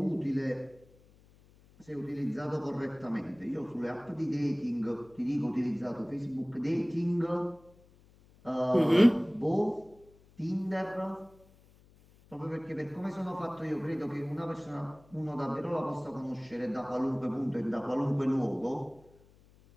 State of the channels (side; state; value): left; noise; hum, 27 dB below the sound